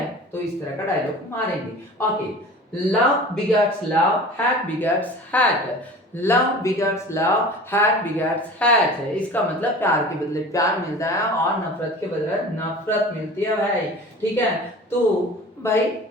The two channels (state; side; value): normal; both; correlation 0.40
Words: तो इस तरह का डायलॉग मारेंगे। Okay, love begets love, hate begets hate, love begets love, hate begets hate है। इसका मतलब प्यार के बदले प्यार मिलता है और नफरत के बदले नफरत मिलती है भाई, ठीक है। तो भाई